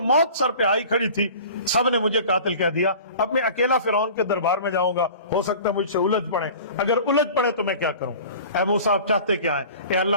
موت سر پہ آئی کھڑی تھی, سب نے مجھے قاتل کہہ دیا. اب میں اکیلا فرعون کے دربار میں جاؤں گا, ہو سکتا ہے مجھ سے الجھ پڑے, اگر الجھ پڑے تو میں کیا کروں؟ اے موسیٰ آپ چاہتے کیا ہے؟ اے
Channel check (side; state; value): both; inverted; correlation -0.42